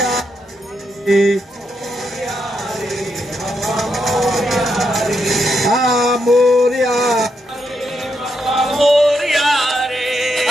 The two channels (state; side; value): normal; both; correlation 0.81